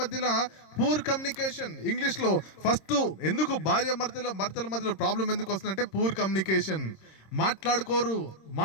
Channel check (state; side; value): late; right; 26 ms